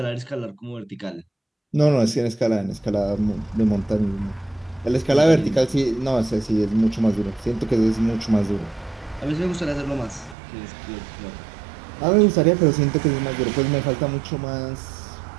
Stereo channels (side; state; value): left; drops out; at 10.4 s